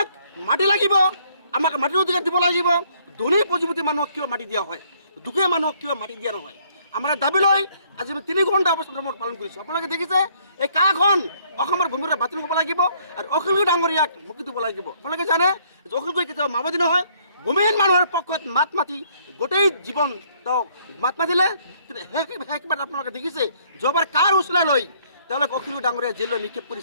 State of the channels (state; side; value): inverted; both; correlation -0.65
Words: মাটি লাগিব, আমাক মাটিৰ অধিকাৰ দিব লাগিব। ধনী পুঁজিপতি মানুহক কিয় মাটি দিয়া হয়, দুখীয়া মানুহক কিয় মাটি দিয়া নহয়, আমাৰ দাবী লৈ আজি আমি 3 ঘণ্টা অৱস্থান পালন কৰিছোঁ। আপোনালোকে দেখিছে এই কাখন অসমৰ ভূমিৰে বাতিল হ'ব লাগিব আৰু অখিল ডাঙৰীয়াক মুক্তি দিব লাগিব। আপোনালোকে জানে যে অখিল গগৈ কেতিয়াও মাওবাদী নহয়, ভূমিহীন মানুহৰ পক্ষত মাত মাতি গোটেই জীৱন তেওঁক মাত মাতিলে। কিন্তু শেষবাৰ আপোনালোকে দেখিছে যোৱাবাৰ কাৰ উচলাই লৈ তেওঁলোকে অখিল ডাঙৰীয়া জেললৈ নিক্ষেপ